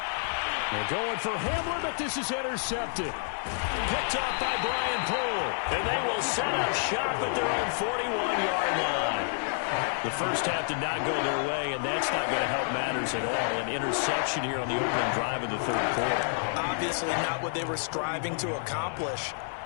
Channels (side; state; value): right; silent; 59 dB below the other